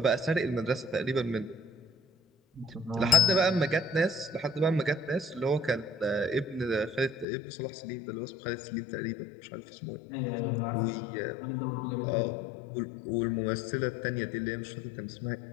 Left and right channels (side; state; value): right; drops out; at 7.2 s